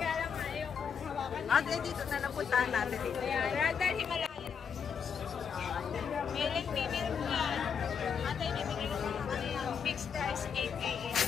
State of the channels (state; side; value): quieter; right; 6.8 dB